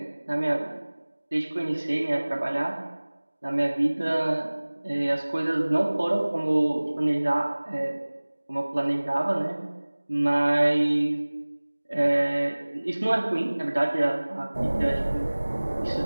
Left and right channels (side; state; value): both; inverted; correlation -1.00